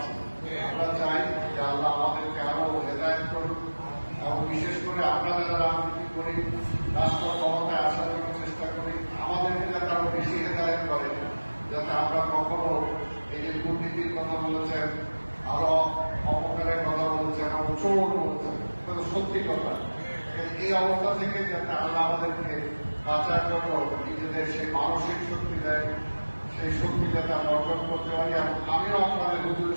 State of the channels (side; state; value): both; inverted; correlation -1.00